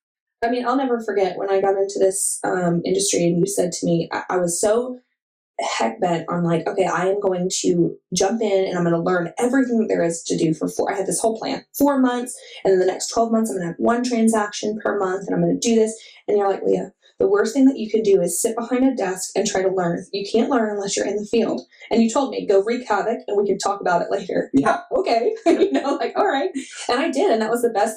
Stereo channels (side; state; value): both; identical; correlation 1.00